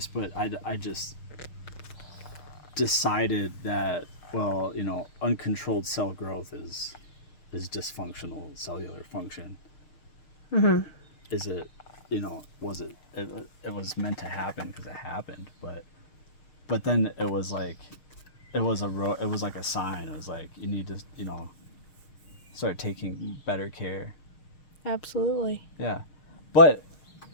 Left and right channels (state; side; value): late; right; 6.5 ms